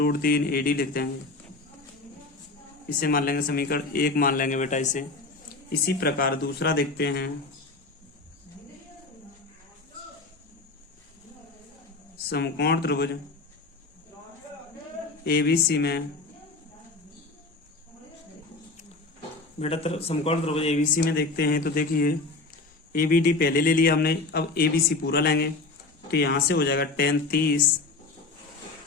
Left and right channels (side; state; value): right; quieter; 3.6 dB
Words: AD लिख देंगे। इसे मान लेंगे समीकरण 1 मान लेंगे बेटा इसे। इसी प्रकार दूसरा देखते हैं। समकोण त्रिभुज ABC में बेटा, समकोण त्रिभुज ABC में देखते हैं। तो देखिए, ABD पहले ले लिया हमने, अब ABC पूरा लेंगे। तो यहाँ से हो जाएगा tan 30